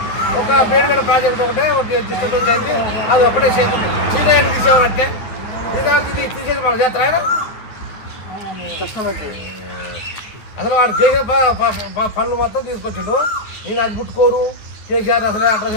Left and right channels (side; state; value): right; late; 9.7 ms